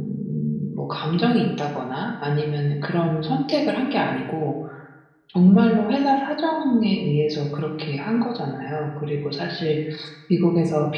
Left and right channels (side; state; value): both; identical; correlation 1.00